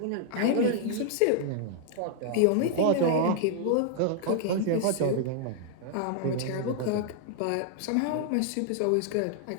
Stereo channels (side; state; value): both; different; correlation -0.01